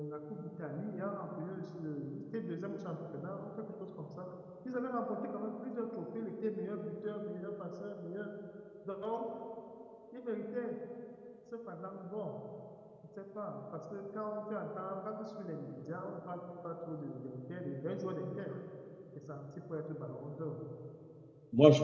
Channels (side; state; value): both; identical; correlation 1.00